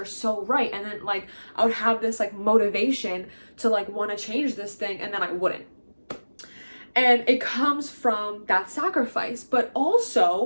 so right. And then like I would have this like motivation to like want to change this thing, and then I wouldn't. And it comes from that sacrifice, but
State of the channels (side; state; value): both; inverted; correlation -1.00